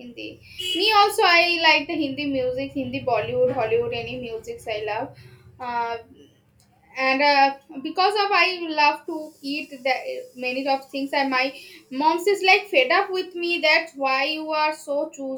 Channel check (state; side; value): identical; both; correlation 1.00